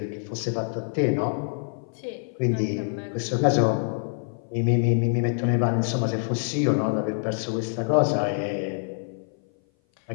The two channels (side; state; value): right; silent; 58 dB below the other